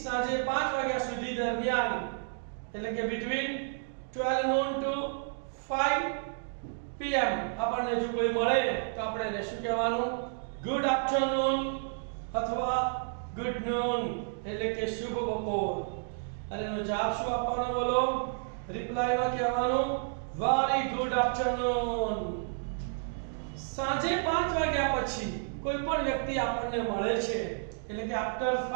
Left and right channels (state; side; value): silent; left; digital silence